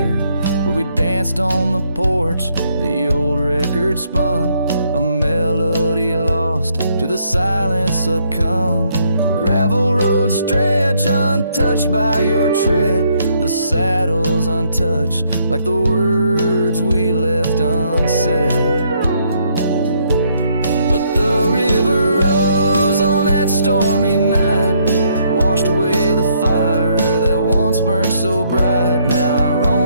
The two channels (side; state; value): both; inverted; correlation -0.71